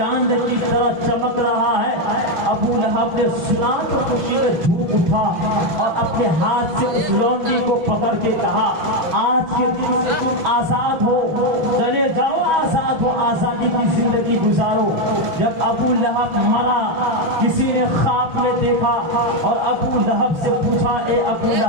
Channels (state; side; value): late; left; 5.8 ms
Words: کی طرح چمک رہا ہے۔ ابو لہب نے سنا تو خوشی میں جھوم اٹھا اور اپنے ہاتھ سے اس لونڈی کو پکڑ کے کہا آج کے دن سے تم آزاد ہو، چلے جاؤ آزاد ہو، آزادی کی زندگی گزارو۔ جب ابو لہب مرا کسی نے خواب میں دیکھا اور ابو لہب سے پوچھا اے ابو